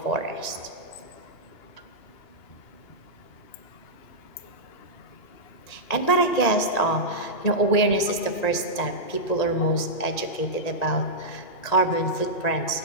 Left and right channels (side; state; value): right; late; 1.9 ms